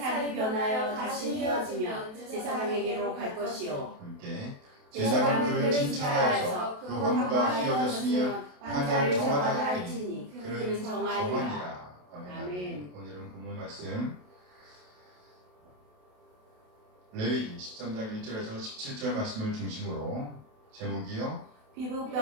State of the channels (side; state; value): left; late; 28 ms